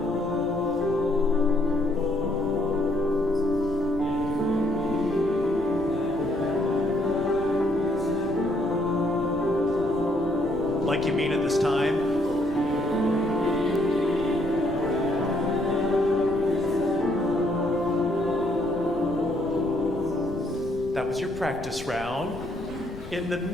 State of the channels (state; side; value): noise; left; rumble, 16 dB below the sound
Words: Like you mean it this time. That was your practice round. In the